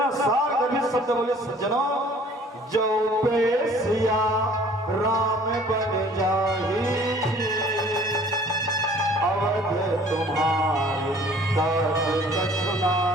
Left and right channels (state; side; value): normal; both; correlation 0.53